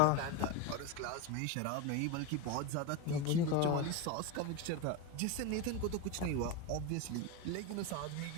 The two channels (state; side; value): different; both; correlation 0.04